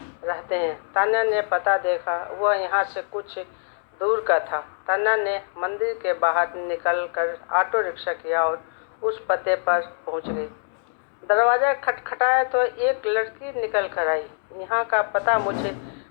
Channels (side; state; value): right; silent; digital silence